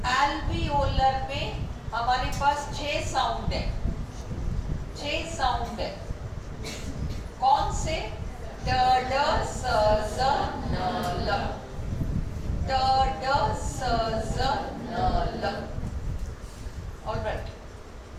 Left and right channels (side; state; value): both; identical; correlation 1.00